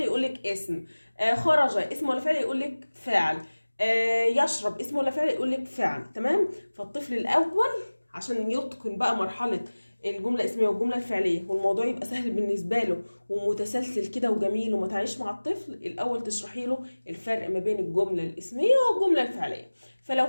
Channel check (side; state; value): both; inverted; correlation -1.00